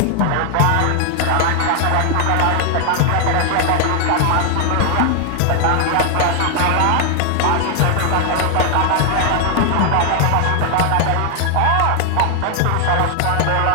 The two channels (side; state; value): both; different; correlation 0.00